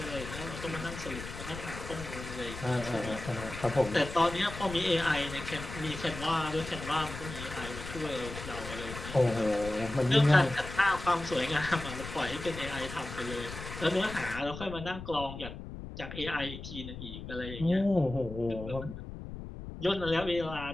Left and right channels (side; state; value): left; noise; rumble, 10 dB below the sound